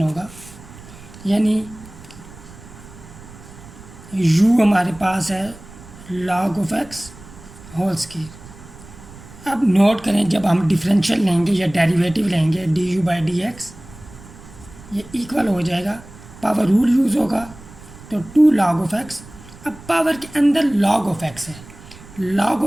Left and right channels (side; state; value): right; noise; rumble, 19 dB below the sound